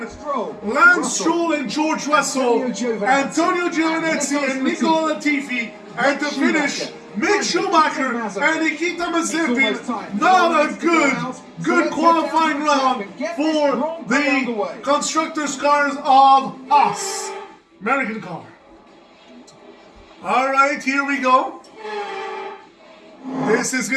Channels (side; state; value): both; identical; correlation 1.00